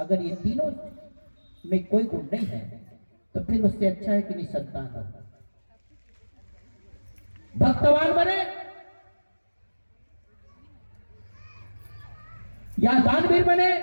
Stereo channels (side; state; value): both; inverted; correlation -1.00